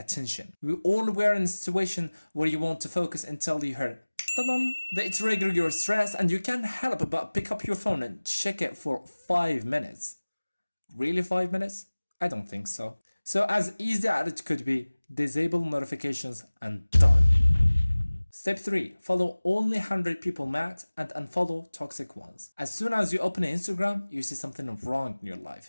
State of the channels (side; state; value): both; inverted; correlation -1.00